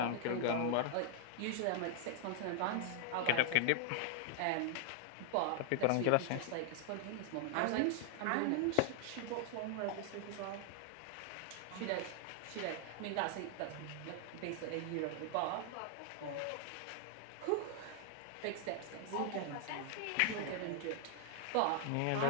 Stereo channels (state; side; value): different; both; correlation 0.00